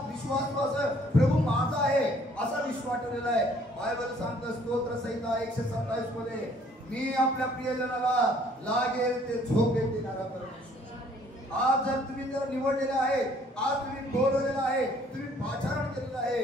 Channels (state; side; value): normal; both; correlation 0.59